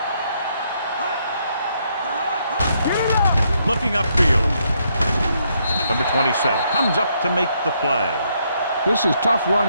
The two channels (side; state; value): both; inverted; correlation -0.74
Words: Looking upfield. Number 27 comes up to make the play. This is tough